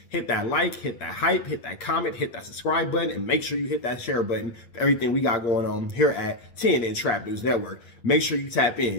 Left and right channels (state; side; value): late; right; 8.6 ms